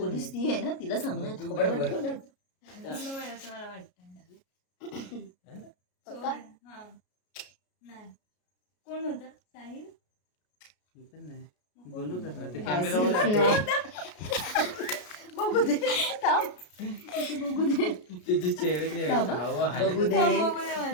ती आहे ना, तिला सांगू ना. थोबड पटकन. कोण होता? साहिल. मी पण नाही बोलू तसं ते कॅमेरावाला. बघू दे. थांब. बघू दे. तिचे चेहरे बघू दे.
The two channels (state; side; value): late; right; 33 ms